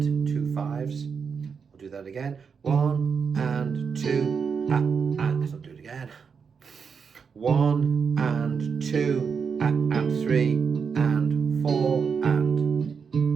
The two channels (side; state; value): left; quieter; 6.0 dB